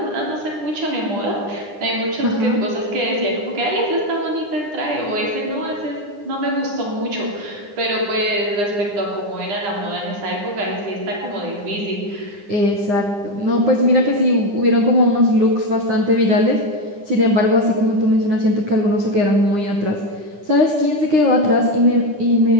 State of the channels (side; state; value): left; late; 9.8 ms